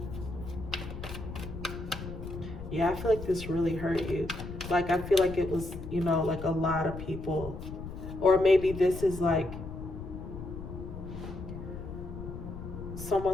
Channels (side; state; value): left; noise; rumble, 9 dB below the sound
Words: Yeah, I feel like this really hurt you. Like, I feel like it was, like a lot of people, or maybe this is like someone